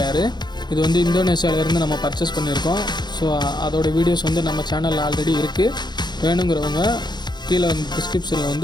இது வந்து இந்தோனேஷியாவிலேருந்து நம்ம பர்ச்சேஸ் பண்ணியிருக்கோம். ஸோ அதோடய வீடியோஸ் வந்து நம்ம சேனலில் ஆல்ரெடி இருக்குது. வேணுங்கிறவங்க கீழே டிஸ்கிரிப்ஷனில்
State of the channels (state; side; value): late; right; 0.21 ms